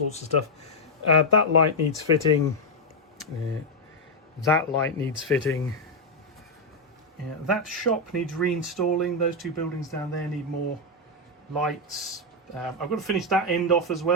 of stuff. That light needs fitting. That light needs fitting. That shop needs reinstalling. Those two buildings down there need more lights. I've got to finish that end off as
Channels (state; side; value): normal; both; correlation 0.00